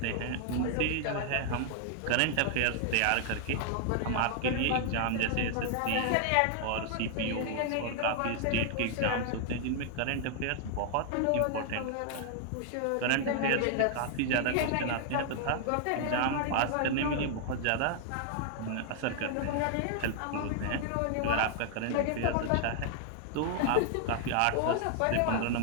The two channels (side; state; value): both; different; correlation 0.00